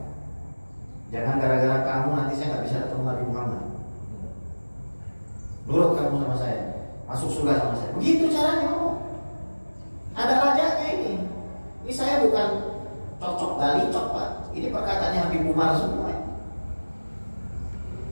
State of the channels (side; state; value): both; inverted; correlation -1.00